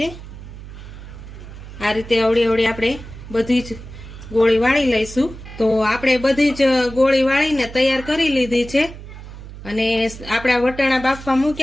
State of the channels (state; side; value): noise; right; hum, 14 dB below the sound